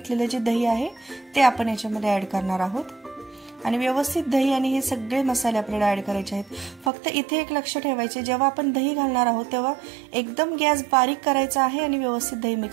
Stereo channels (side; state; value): left; drops out; at 6.9 s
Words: जे दही आहे ते आपण याच्यामध्ये ऍड करणार आहोत। आणि व्यवस्थित दही आणि हे सगळे मसाले आपल्याला ऍड करायचे आहेत। फक्त इथे एक लक्ष ठेवायचे, जेव्हा आपण दही घालणार आहोत तेव्हा एकदम गॅस बारीक करायचा आहे आणि व्यवस्थित दही